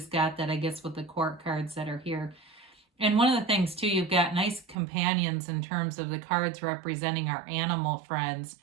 got that, I guess, with the court cards that are here. And one of the things, too, you've got nice companions in terms of the cards representing our animal friends.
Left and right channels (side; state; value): left; drops out; at 4.8 s